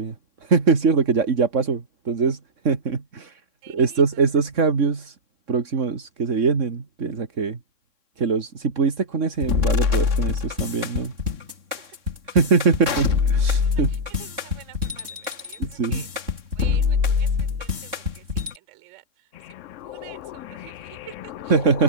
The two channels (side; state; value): left; late; 3.6 ms